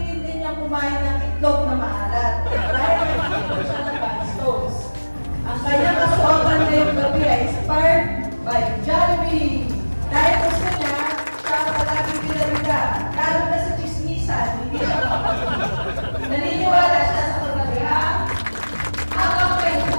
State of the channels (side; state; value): both; inverted; correlation -1.00